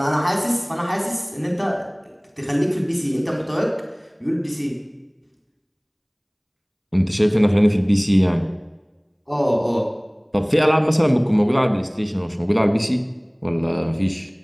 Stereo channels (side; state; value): both; identical; correlation 1.00